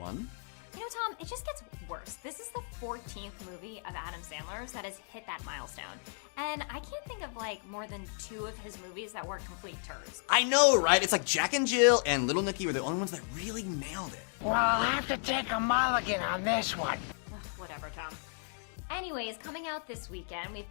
You know, Tom, it just gets worse. This is the 14th movie of Adam Sandler's that has hit that milestone. And I can't think of like more than 2 of his movies that weren't complete turds. I know, right? It's like Jack and Jill and Little Nicky were the only ones that really nailed it. Well, I'll have to take a mulligan on this one. Ugh, whatever, Tom. Anyways, coming out this weekend, we've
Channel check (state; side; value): silent; right; 55 dB below the other